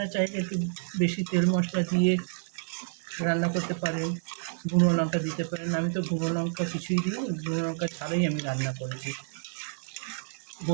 চাইলে একটু বেশি তেল মশলা দিয়ে রান্না করতে পারেন, গুঁড়ো লঙ্কা দিতে পারেন। আমি তো গুঁড়ো লঙ্কা কিছুই দিইনি, গুঁড়ো লঙ্কা ছাড়াই আমি রান্না করেছি।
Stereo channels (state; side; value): silent; left; 58 dB below the other